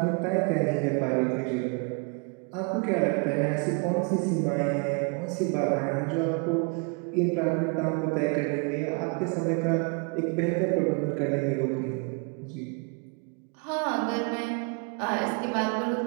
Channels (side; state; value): left; quieter; 34.4 dB